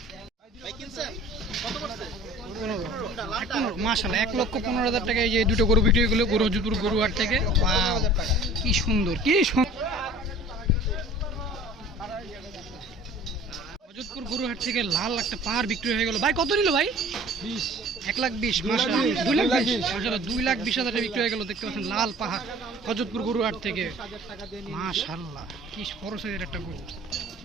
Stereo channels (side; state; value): both; normal; correlation 0.46